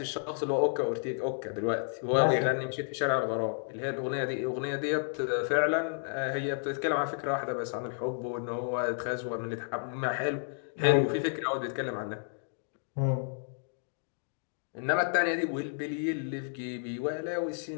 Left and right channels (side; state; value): right; silent; digital silence